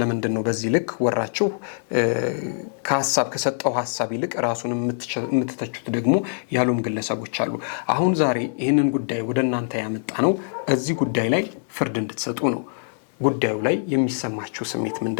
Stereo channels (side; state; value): right; silent; digital silence